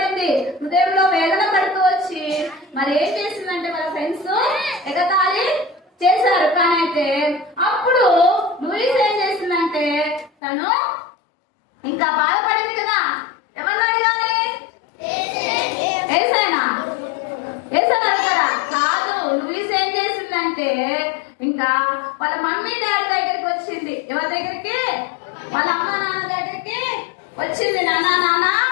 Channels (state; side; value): drops out; right; at 10.3 s